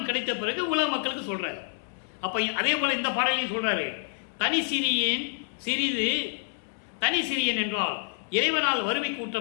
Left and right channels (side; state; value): right; silent; 59 dB below the other